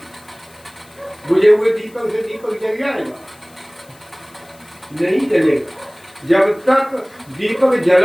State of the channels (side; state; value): left; noise; hiss, 27 dB below the sound